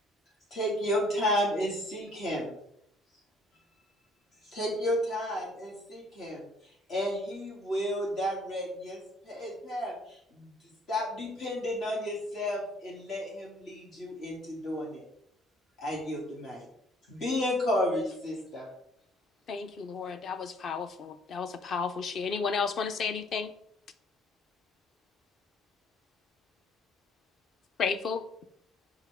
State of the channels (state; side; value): normal; both; correlation 0.60